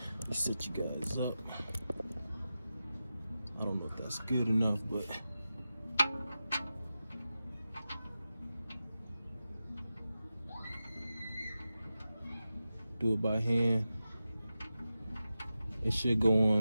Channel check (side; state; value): both; inverted; correlation -0.92